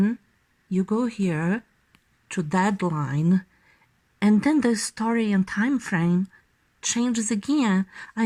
you go here to deadline, and then the story and time frame changes again.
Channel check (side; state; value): both; identical; correlation 1.00